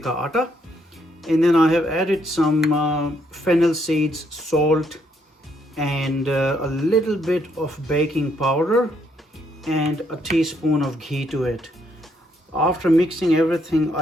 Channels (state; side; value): normal; both; correlation 0.73